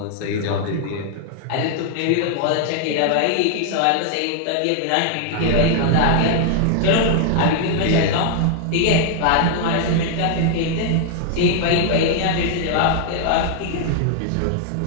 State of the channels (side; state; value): both; different; correlation 0.00